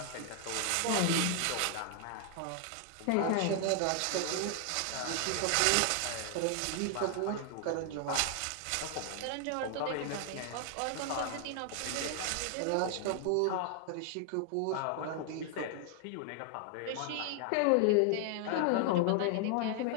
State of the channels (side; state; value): both; different; correlation 0.00